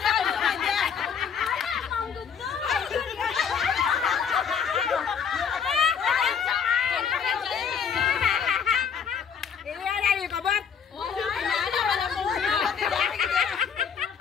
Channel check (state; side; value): quieter; right; 7.0 dB